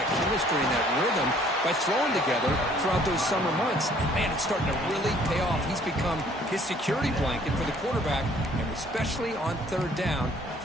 chemistry and that rhythm by throwing together throughout those summer months. And, man, it's starting to really pay off. He's become his security blanket for the quarterback, and especially on third down,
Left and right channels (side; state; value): both; normal; correlation 0.59